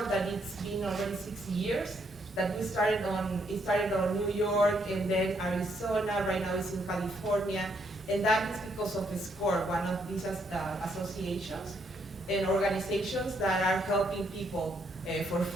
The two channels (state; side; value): normal; both; correlation 0.73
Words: that it's been already 6 years. That it started on New York, and then Arizona. Right now it's in California, and that is because of SCORE, one of these associations and organizations that are helping people for